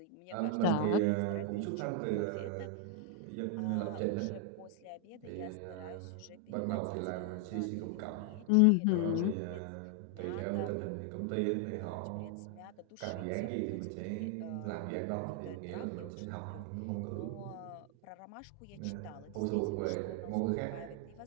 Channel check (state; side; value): different; both; correlation 0.00